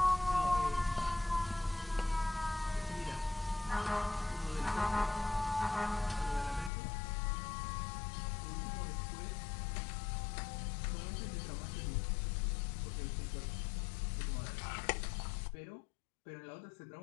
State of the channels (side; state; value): right; drops out; at 6.7 s